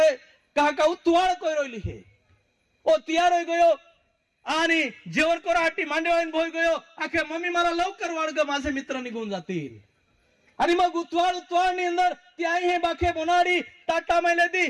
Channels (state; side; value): identical; both; correlation 1.00